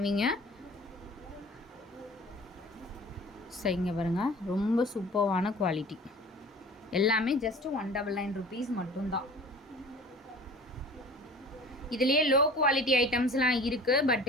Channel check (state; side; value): normal; both; correlation 0.43